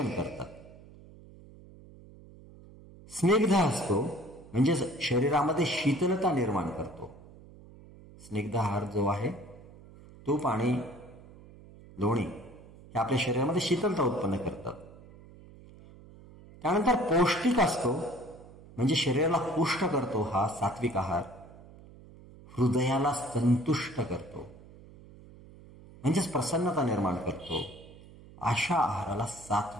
करतात. स्निग्ध असतो म्हणजे शरीरामध्ये शीतलता निर्माण करतो. स्निग्ध आहार जो आहे तूप आणि लोणी हे आपल्या शरीरामध्ये शीतलता उत्पन्न करतात. त्यानंतर पौष्टिक असतो म्हणजे शरीराला पुष्ट करतो. हा सात्विक आहार हृदयाला संतुष्ट करतो. म्हणजेच प्रसन्नता निर्माण करतो, अशा आहाराला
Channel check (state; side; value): noise; right; hum, 20 dB below the sound